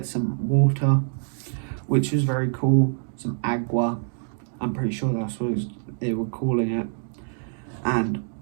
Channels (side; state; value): left; silent; digital silence